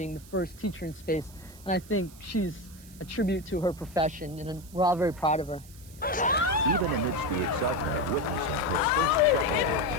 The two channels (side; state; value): right; noise; hiss, 21 dB below the sound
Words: the first teacher in space. And I think she's a tribute to her profession, and we're all very proud of her. Even amidst the excitement of witnessing her first,